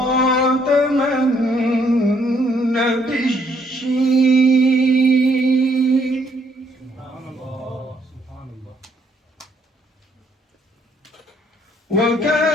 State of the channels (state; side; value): normal; both; correlation 0.69